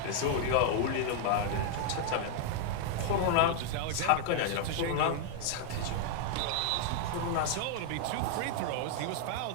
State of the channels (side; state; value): both; different; correlation 0.00